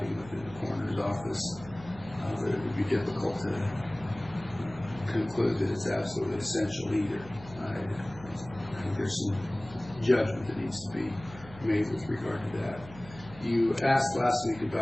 within the coroner's office, but it would be difficult to conclude that it's absolutely essential either. I think there's some judgment that needs to be made with regard to that. You asked last week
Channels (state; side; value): noise; right; hum, 17 dB below the sound